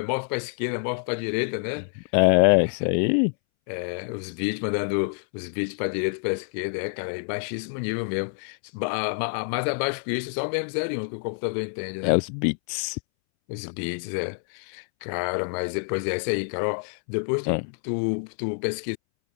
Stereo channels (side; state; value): right; silent; 60 dB below the other